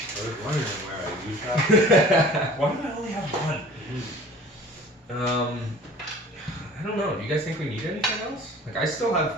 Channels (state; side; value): normal; both; correlation 0.45